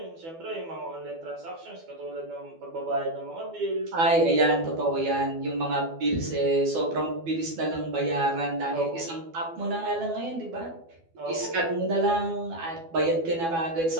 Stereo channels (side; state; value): left; late; 12 ms